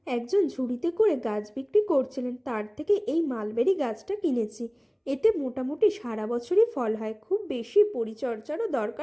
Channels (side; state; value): both; identical; correlation 1.00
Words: একজন ঝুড়িতে করে গাছ বিক্রি করছিলেন, তার থেকে এই মালবেরি গাছটা কিনেছি। এতে মোটামুটি সারা বছরই ফল হয়, খুব বেশি পরিচর্যারও